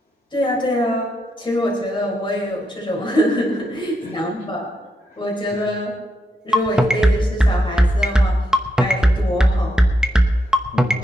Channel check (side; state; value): both; normal; correlation 0.83